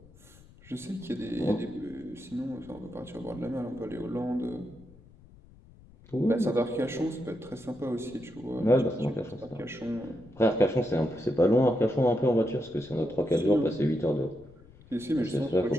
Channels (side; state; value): left; noise; rumble, 24 dB below the sound